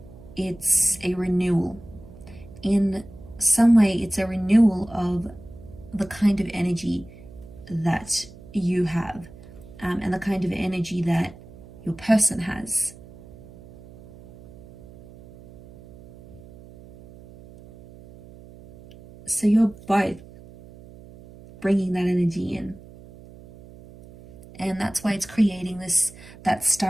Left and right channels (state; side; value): noise; right; hum, 19 dB below the sound